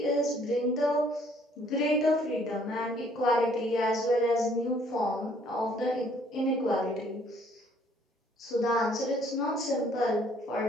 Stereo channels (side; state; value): both; normal; correlation 0.62